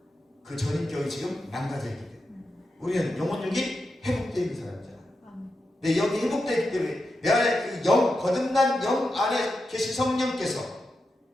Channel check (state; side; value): normal; both; correlation 0.88